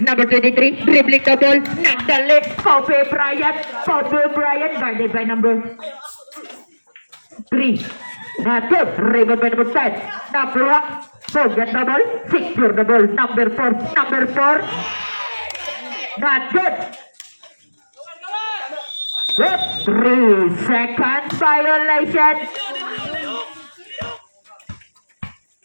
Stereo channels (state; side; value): inverted; both; correlation -1.00